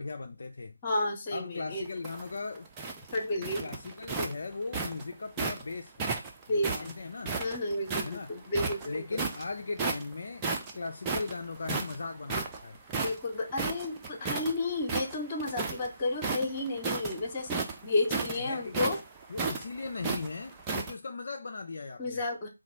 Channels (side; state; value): both; inverted; correlation -0.68